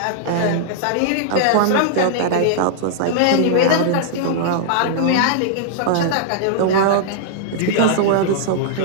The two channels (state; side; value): different; both; correlation -0.01